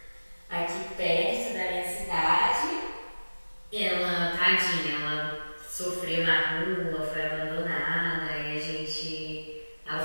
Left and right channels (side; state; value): both; inverted; correlation -1.00